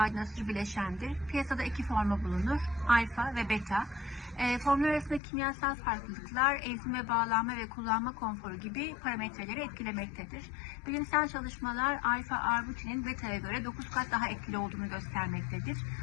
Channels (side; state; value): right; drops out; at 5.2 s